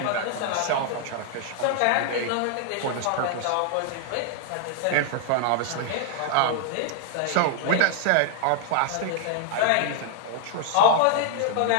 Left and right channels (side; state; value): both; different; correlation 0.00